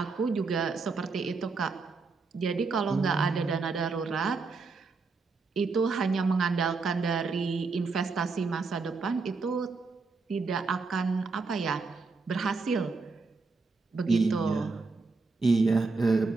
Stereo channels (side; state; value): left; quieter; 4.2 dB